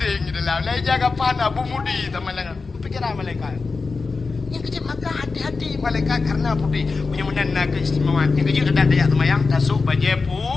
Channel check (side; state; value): right; quieter; 4.3 dB